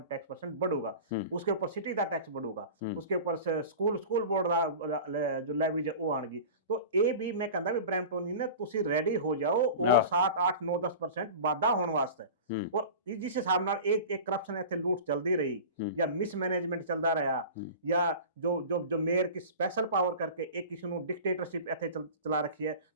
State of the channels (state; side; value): inverted; both; correlation -0.35